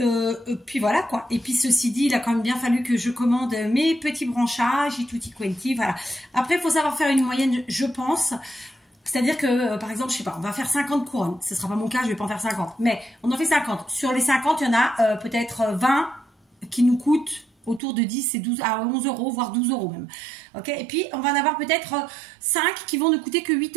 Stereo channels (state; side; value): drops out; left; at 17.8 s